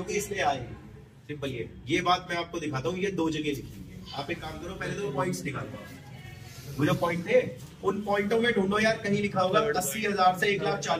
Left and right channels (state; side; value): identical; both; correlation 1.00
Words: इसलिए आएगी। सिंपल। ये बात मैं आपको दिखाता हूँ, ये 2 जगह लिखी हुई है। आप एक काम करो, पहले तो पॉइंट्स निकालो, वो जो पॉइंट थे उन पॉइंटों में ढूंढो यार, कहीं लिखा होगा 80,000 से